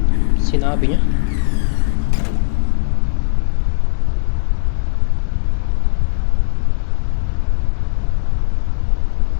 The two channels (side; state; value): right; silent; 63 dB below the other